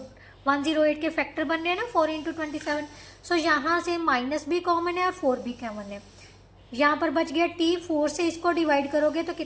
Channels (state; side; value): identical; both; correlation 1.00